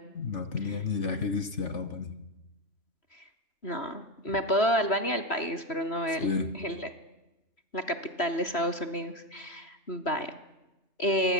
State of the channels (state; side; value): late; right; 3.0 ms